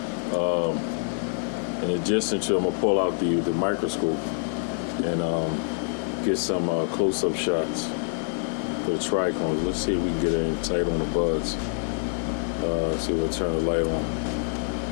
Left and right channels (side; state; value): right; silent; 56 dB below the other